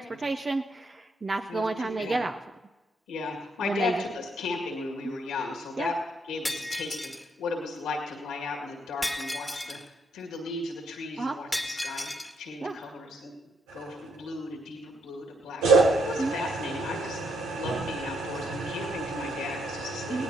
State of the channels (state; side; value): normal; both; correlation 0.74